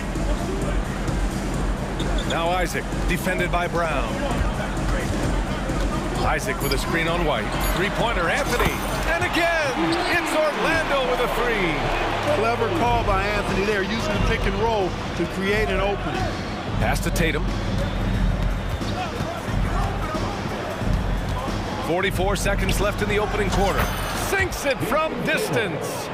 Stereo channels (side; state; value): both; identical; correlation 1.00